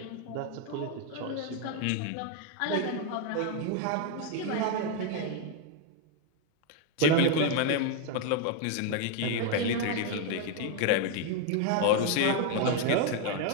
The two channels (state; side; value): different; both; correlation 0.01